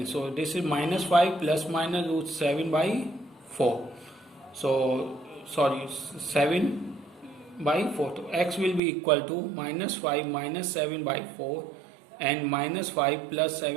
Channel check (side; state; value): left; drops out; at 8.8 s